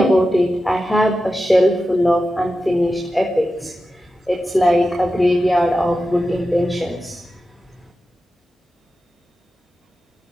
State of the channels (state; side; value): normal; both; correlation 0.92